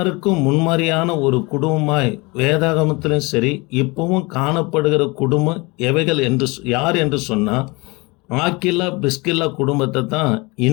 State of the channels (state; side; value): quieter; right; 25.9 dB